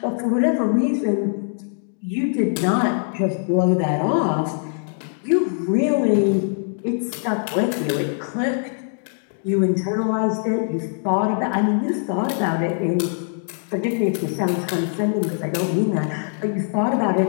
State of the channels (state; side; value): silent; right; digital silence